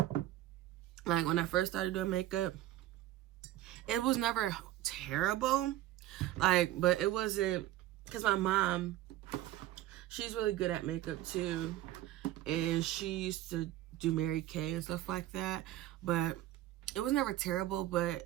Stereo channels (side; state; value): left; quieter; 14.5 dB